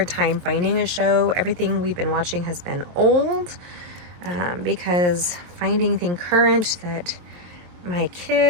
time finding a show. Everything we've been watching has been old, because finding thing current that my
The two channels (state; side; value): late; left; 23 ms